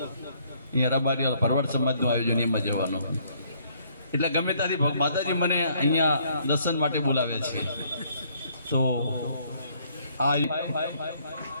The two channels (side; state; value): both; inverted; correlation -0.65